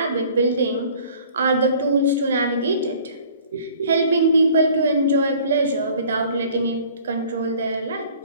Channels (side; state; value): both; inverted; correlation -0.51